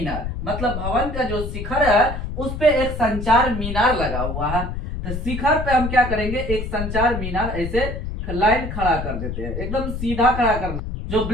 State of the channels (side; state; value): left; noise; rumble, 5 dB below the sound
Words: मतलब भवन का जो शिखर है उस पे एक संचार मीनार लगा हुआ है। तो शिखर पे हम क्या करेंगे, एक संचार मीनार ऐसे लाइन खड़ा कर देते हैं, एकदम सीधा खड़ा करना। जो